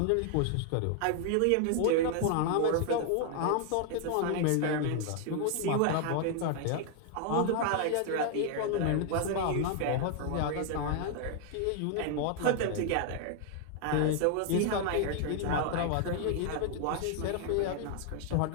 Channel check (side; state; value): both; different; correlation 0.00